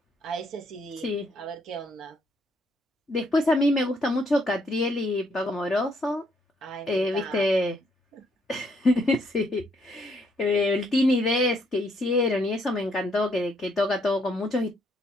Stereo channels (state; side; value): normal; both; correlation 0.71